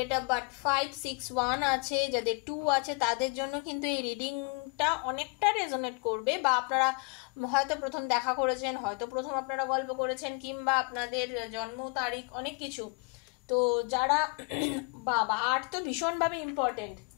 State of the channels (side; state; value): right; quieter; 33.4 dB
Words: অফ বার্থ 561 আছে, যাদের 2 আছে, তাদের জন্য কিন্তু এই রিডিংটা অনেকটা রেজোনেট করবে। বা আপনারা হয়তো প্রথম দেখা করেছেন, হয়তো প্রথম আপনারা গল্প করেছেন, কিংবা আপনাদের জন্ম তারিখ অনেক কিছু। তো যারা বাবা 8 তো ভীষণভাবে ইম্পর্টেন্ট।